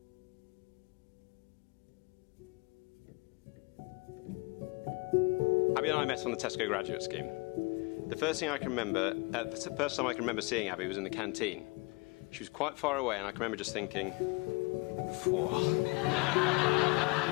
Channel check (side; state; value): right; quieter; 27.1 dB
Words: Abby and I met on the Tesco graduate scheme. The first time I can remember seeing Abby was in the canteen. She was quite far away, and I can remember just thinking, "Phew,